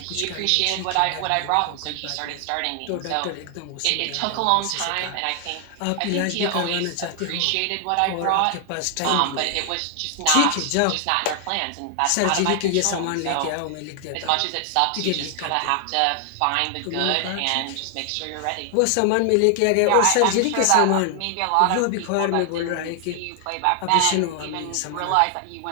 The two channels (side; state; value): both; different; correlation 0.00